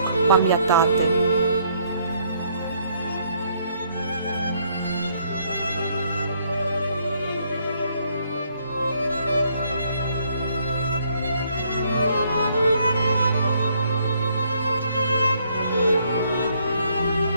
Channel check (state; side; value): inverted; both; correlation -0.68